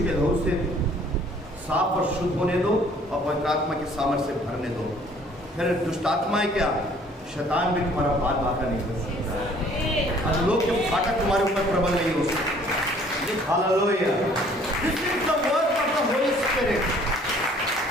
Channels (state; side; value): normal; both; correlation 0.57